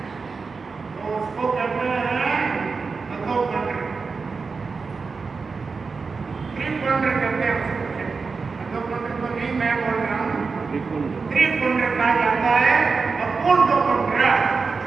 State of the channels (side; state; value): left; quieter; 4.7 dB